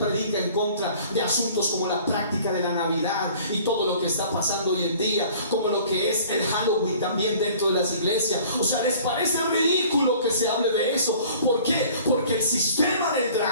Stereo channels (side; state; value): both; inverted; correlation -0.50